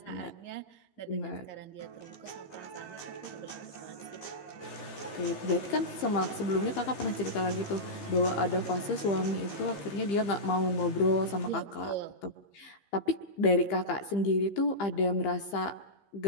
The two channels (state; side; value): late; right; 15 ms